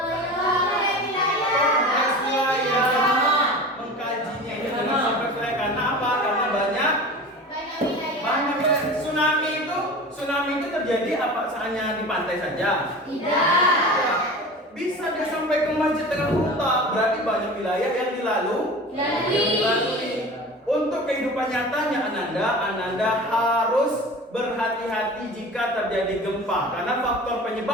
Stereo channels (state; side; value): normal; both; correlation 0.36